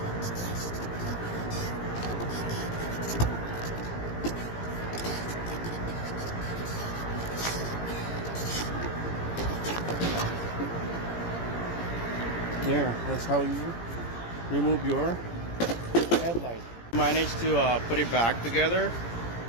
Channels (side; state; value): right; late; 17 ms